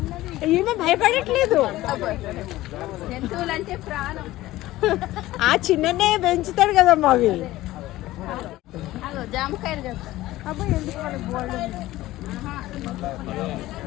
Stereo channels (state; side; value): quieter; right; 16.6 dB